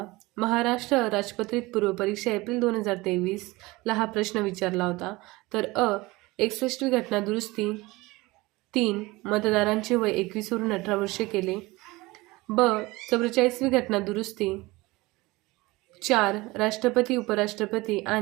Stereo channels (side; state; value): left; quieter; 21.5 dB